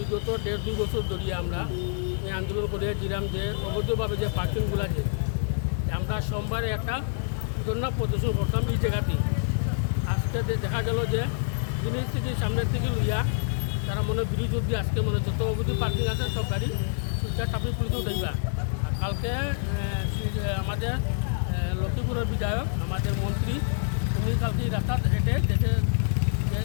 1.5-2 বছর ধরে আমরা এই আন্দোলন করিয়া দিলাম যে অবৈধভাবে যে পার্কিংগুলো আছে, আমরা সোমবারে একটা ধর্ণা প্রদর্শন করতাম এই জায়গাতে। আজকে দেখা গেল যে জিনিস থেকে সামনের থেকে লইয়া তারা মনে বিরোধী অব্দি আজকে মনে যত অবৈধ পার্কিং আছে সব গাড়ি শিলচর ট্রাফিক পুলিশে উঠাইবা। আর কালকে আমাদের লক্ষ্মীপুরের বিধায়ক, আমাদের মন্ত্রী, উনি কালকে এই রাস্তা হেঁটে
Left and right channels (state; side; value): silent; right; digital silence